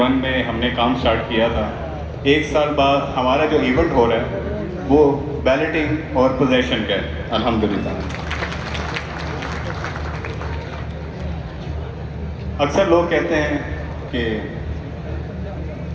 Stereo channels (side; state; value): both; identical; correlation 1.00